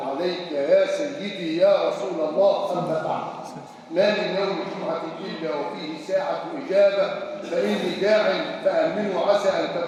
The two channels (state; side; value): identical; both; correlation 1.00